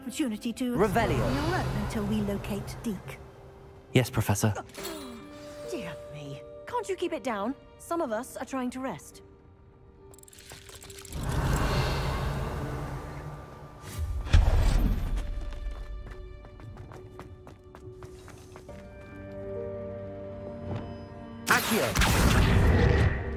to explore on your own until we locate Deke. Yes, Professor. Dear me. Can't you keep it down? Some of us are trying to rest. Accio!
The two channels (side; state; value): both; identical; correlation 1.00